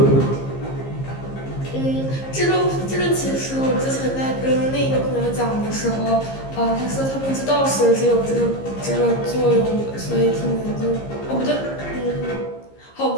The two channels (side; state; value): right; late; 15 ms